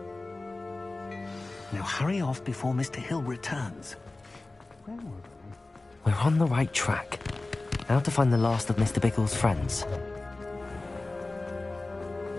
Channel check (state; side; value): quieter; right; 3.1 dB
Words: Now hurry off before Mr. Hill returns. We're on the right track. Now to find the last of Mr. Bickle's friends.